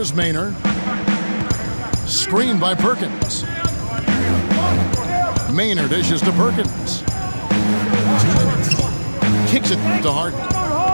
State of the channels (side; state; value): both; inverted; correlation -1.00